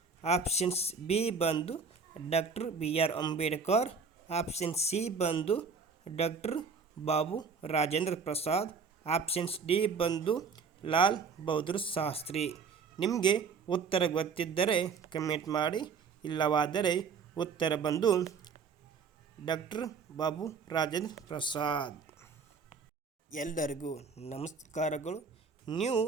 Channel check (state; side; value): quieter; left; 5.4 dB